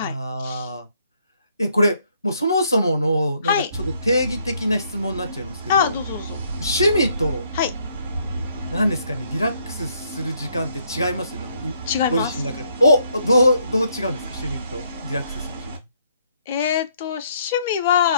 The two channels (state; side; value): inverted; both; correlation -0.70